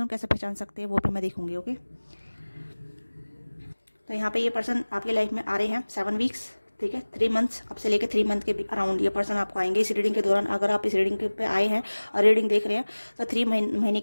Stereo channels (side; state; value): both; inverted; correlation -1.00